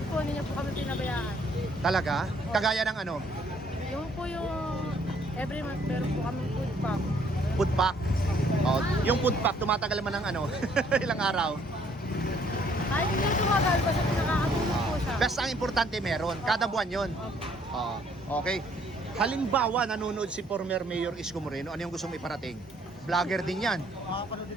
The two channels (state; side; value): normal; both; correlation 0.63